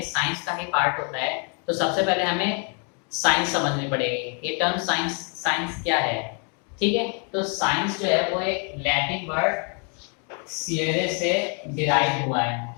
साइंस का ही पार्ट होता है। तो सबसे पहले हमें साइंस समझनी पड़ेगी। ये टर्म साइंस क्या है। ठीक है, तो साइंस जो है वो एक लैटिन वर्ड सियरे से डिराइव हुआ है।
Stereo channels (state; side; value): quieter; right; 39.3 dB